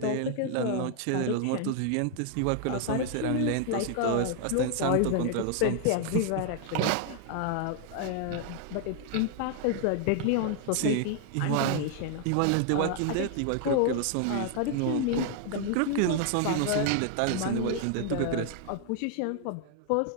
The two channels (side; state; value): both; different; correlation 0.00